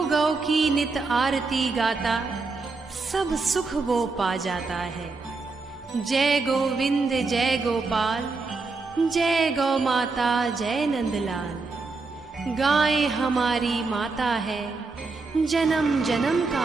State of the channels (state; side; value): quieter; left; 4.0 dB